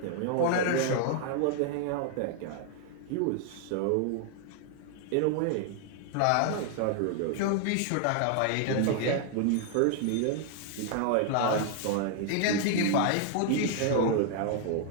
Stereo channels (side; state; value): both; different; correlation 0.00